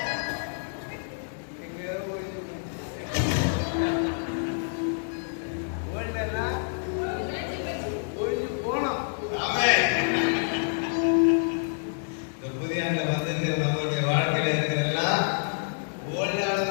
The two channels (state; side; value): silent; right; digital silence